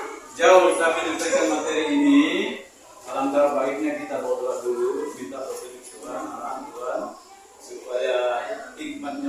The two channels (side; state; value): both; identical; correlation 1.00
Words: jauh kami menyampaikan materi ini, alangkah baiknya kita berdoa dulu, minta petunjuk Tuhan, arahan Tuhan, supaya hikmat